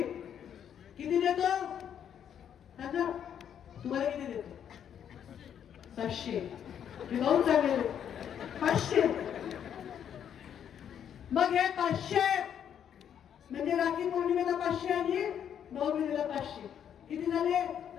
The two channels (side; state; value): right; quieter; 9.0 dB